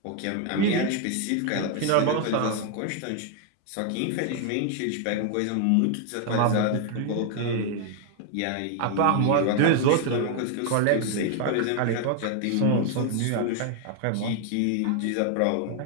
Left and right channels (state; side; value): different; both; correlation 0.00